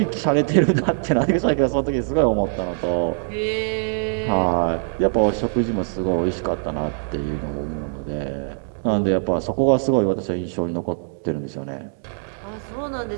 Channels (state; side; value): silent; left; 62 dB below the other